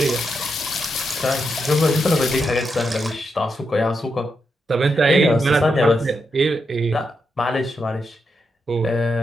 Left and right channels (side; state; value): both; normal; correlation 0.84